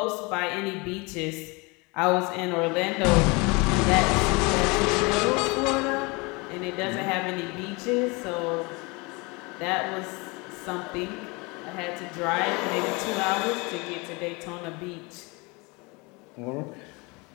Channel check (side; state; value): right; quieter; 27.3 dB